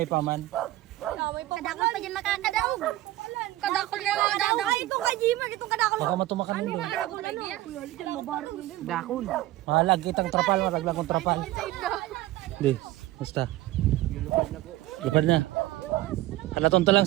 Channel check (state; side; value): quieter; left; 16.6 dB